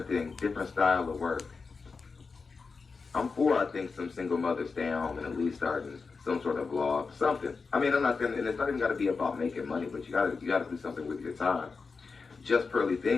thing, different style of work. I'm for, I think, some single mothers staying home and at least starting some sort of vlog, something. I mean, I'm not gonna, and it's not even got to be about making money, but you gotta do something with your time. Just Pearly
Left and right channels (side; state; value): right; quieter; 4.7 dB